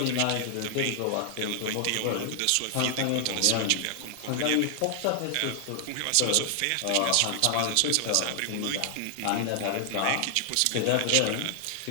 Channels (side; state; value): both; different; correlation 0.00